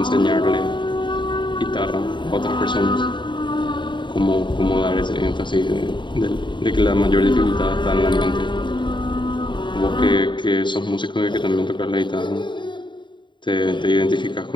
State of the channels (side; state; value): right; late; 0.23 ms